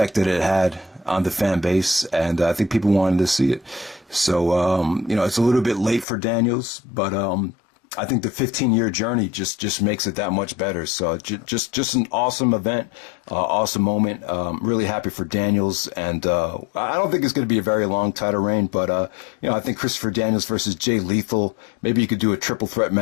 that it had on the fan base, and I think people wanted to see it. So, you know, it's a little bit late for Daniels, but I think the 15-year journey just makes it that much better. So just an awesome event, awesome moment. Really happy for Daniels, and I don't think it's going to be a very long title reign, but you know, I think Christopher Daniels versus Jay Lethal. Maybe you could do a triple threat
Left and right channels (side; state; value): right; drops out; at 6.1 s